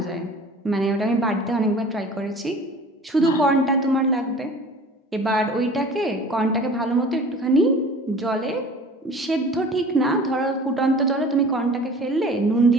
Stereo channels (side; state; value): both; normal; correlation 0.44